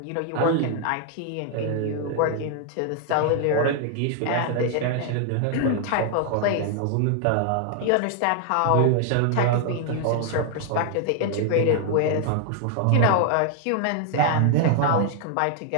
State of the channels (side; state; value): both; different; correlation 0.00